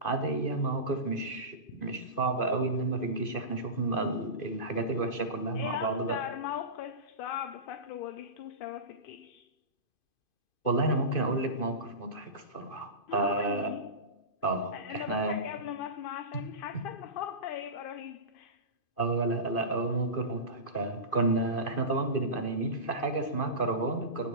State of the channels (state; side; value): late; right; 2.5 ms